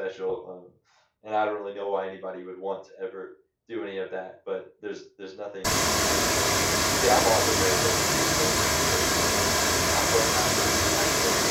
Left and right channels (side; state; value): both; identical; correlation 1.00